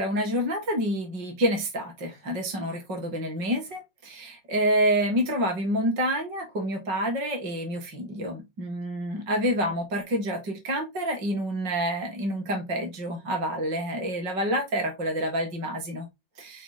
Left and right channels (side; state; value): left; late; 5.6 ms